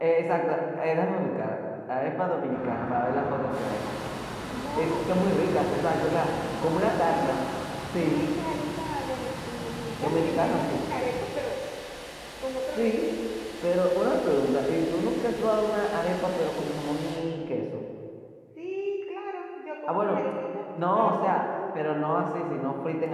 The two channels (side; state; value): both; identical; correlation 1.00